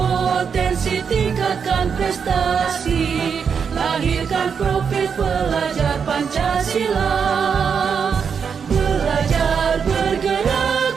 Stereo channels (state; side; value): quieter; left; 6.5 dB